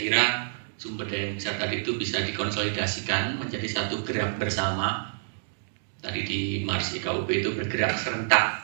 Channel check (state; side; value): silent; left; digital silence